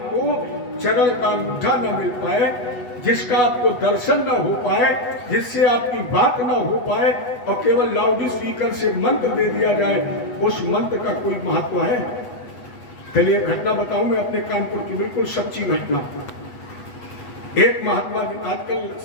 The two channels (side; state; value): right; late; 8.1 ms